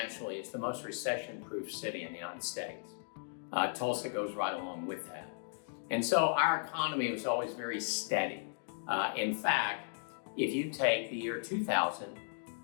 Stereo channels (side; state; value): right; silent; digital silence